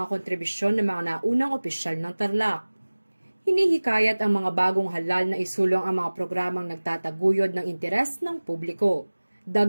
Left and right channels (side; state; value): both; inverted; correlation -1.00